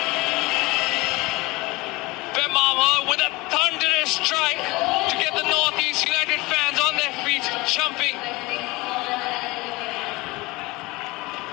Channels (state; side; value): quieter; right; 22.5 dB